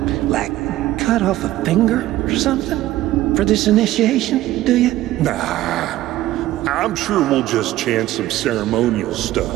like, cut off a finger or something for this initiation, do you? Nah, I'm sure we'll just chant some ceremonial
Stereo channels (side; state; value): left; quieter; 15.3 dB